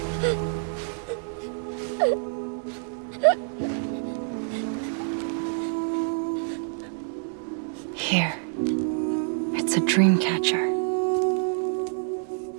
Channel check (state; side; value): silent; left; 60 dB below the other